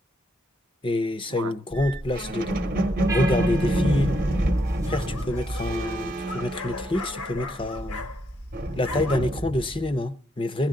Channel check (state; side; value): normal; both; correlation 0.77